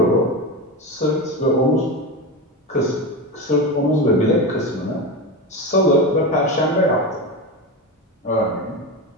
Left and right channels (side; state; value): both; normal; correlation 0.20